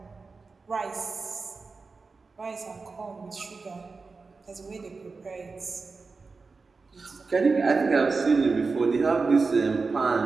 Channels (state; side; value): quieter; left; 4.3 dB